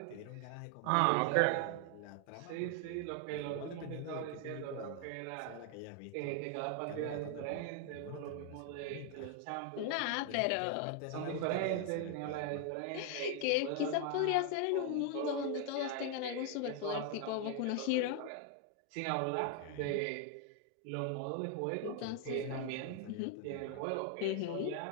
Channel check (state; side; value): different; both; correlation 0.00